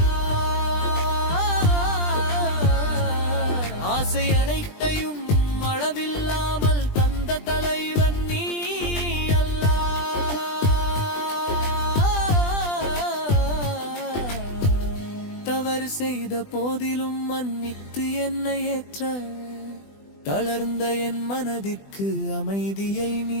ஆசை அனைத்தையும் அளவில்லாமல் தந்த தலைவன் நீ செய்த போதிலும் மன்னித்து என்னை ஏற்ற, தளர்ந்த என் மனதிற்கு அமைதியை நீ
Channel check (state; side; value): late; right; 20 ms